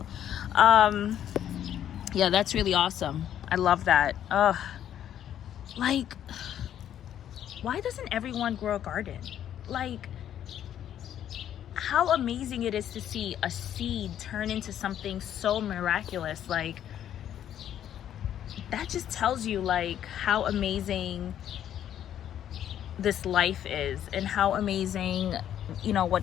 Yeah, that's really awesome. I love that. Like, why doesn't everyone grow a garden? Like, how amazing it is to see a seed turn into something so miraculous. Like, that just tells you like how amazing this life is and how amazing, you know,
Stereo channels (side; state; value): right; quieter; 10.5 dB